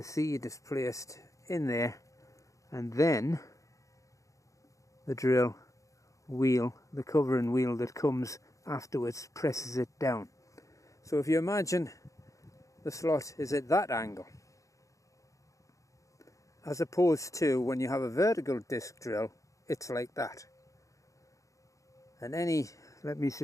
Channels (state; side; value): late; right; 0.16 ms